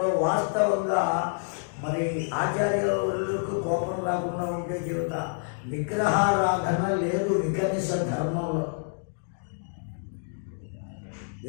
వాస్తవంగా మరి ఆచార్యులకు కోపం రాకుండా ఉంటే చెబుతా, విగ్రహారాధన లేదు వికనిస ధర్మంలో.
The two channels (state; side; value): silent; right; digital silence